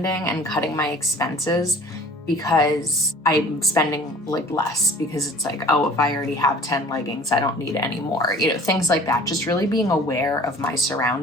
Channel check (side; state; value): both; normal; correlation 0.47